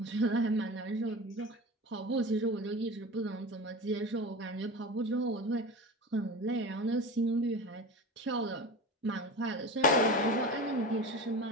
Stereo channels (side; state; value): both; normal; correlation 0.30